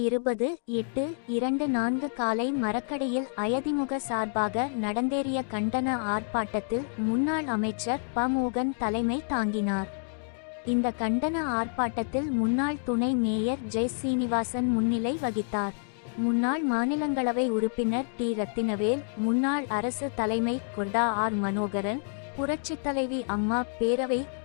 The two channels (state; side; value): silent; right; 58 dB below the other